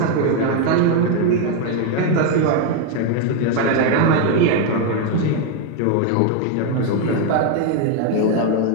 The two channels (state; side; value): different; both; correlation 0.01